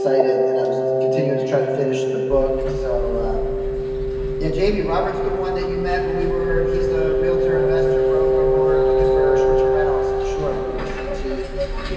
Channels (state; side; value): identical; both; correlation 1.00